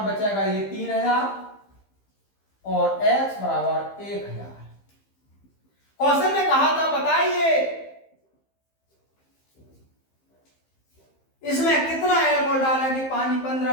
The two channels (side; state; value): right; late; 15 ms